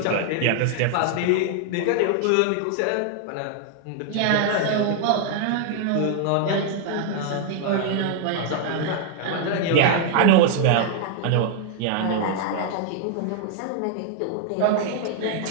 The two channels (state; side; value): different; both; correlation 0.00